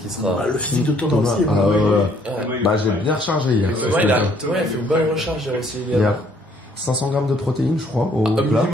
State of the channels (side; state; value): both; normal; correlation 0.64